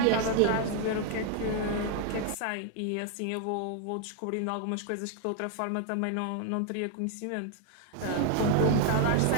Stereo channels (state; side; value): different; both; correlation 0.00